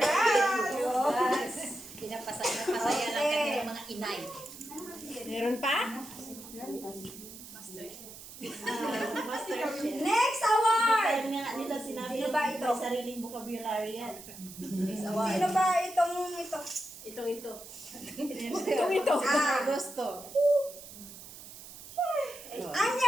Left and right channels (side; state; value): right; noise; hiss, 15 dB below the sound